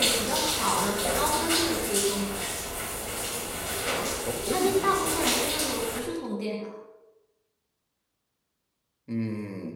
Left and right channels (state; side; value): identical; both; correlation 1.00